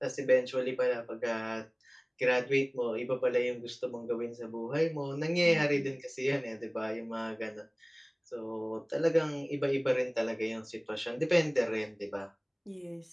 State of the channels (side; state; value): both; identical; correlation 1.00